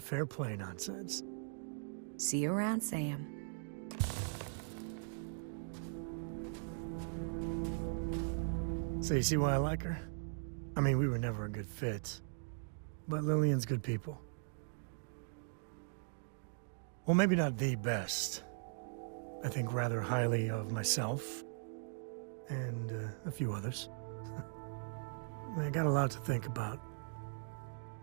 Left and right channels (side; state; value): left; silent; digital silence